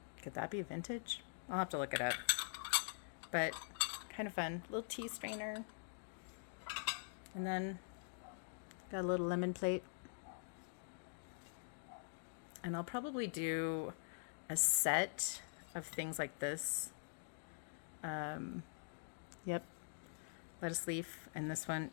Could that be vintage? I'll have to look it up. But kind of fun. Little tea strainer. And then got a little lemon plate. And I'll probably do a set of things like this. Yep. Lettuce leaf. And this one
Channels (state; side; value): silent; right; digital silence